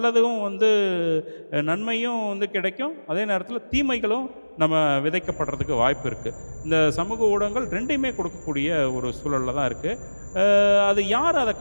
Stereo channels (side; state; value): both; inverted; correlation -1.00